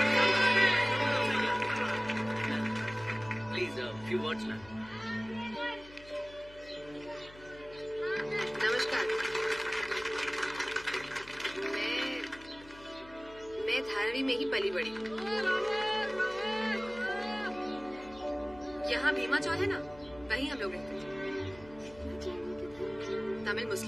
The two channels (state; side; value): noise; left; hum, 21 dB below the sound